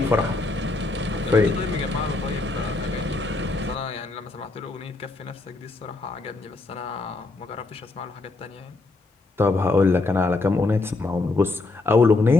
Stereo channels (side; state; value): right; quieter; 3.4 dB